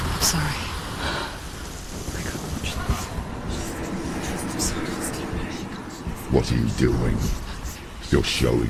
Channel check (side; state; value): both; identical; correlation 1.00